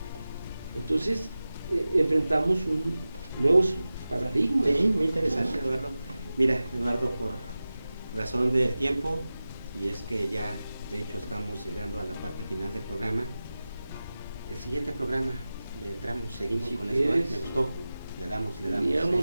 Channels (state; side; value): inverted; both; correlation -0.95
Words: Entonces, enfrentamos nuevos paradigmas. Sí, muy interesante, Eduardo. Mira, Eduardo, por razón del tiempo, y es que ya, de hecho, estamos llegando a la parte final del programa. El siguiente programa, le entramos, seguimos Si con quieres, esto, ¿me gustó? Le damos.